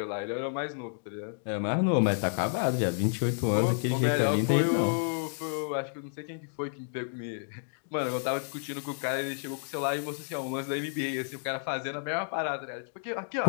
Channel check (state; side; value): silent; right; digital silence